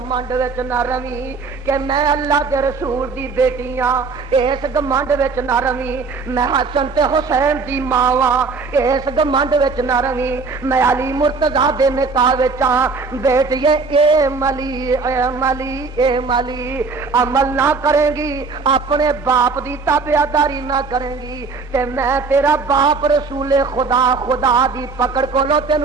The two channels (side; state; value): left; quieter; 4.5 dB